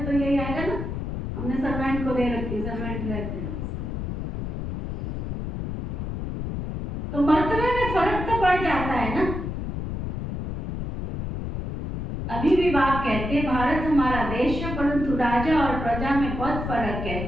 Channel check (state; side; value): noise; left; rumble, 5 dB below the sound